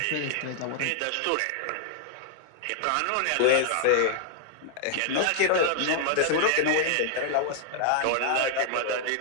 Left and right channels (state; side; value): different; both; correlation -0.01